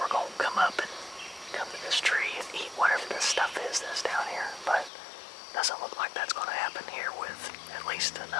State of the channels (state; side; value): drops out; right; at 4.9 s